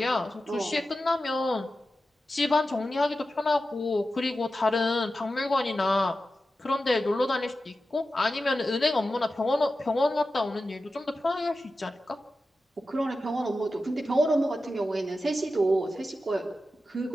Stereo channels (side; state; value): both; normal; correlation 0.92